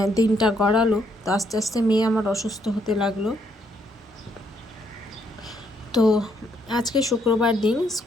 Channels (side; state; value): both; normal; correlation 0.72